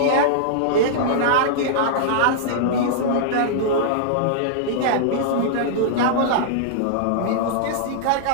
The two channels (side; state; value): both; different; correlation -0.02